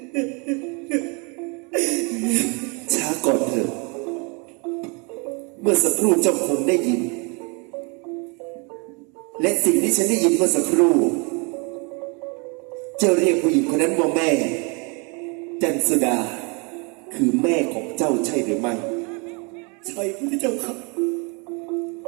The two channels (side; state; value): left; quieter; 32.2 dB